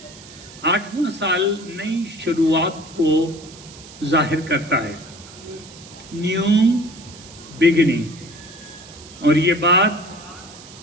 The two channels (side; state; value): right; noise; hiss, 19 dB below the sound